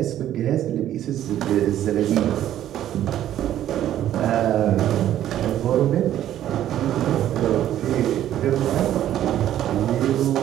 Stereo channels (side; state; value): left; quieter; 11.9 dB